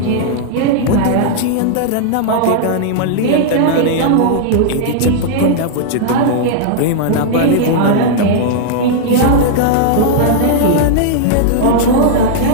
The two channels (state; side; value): different; both; correlation -0.01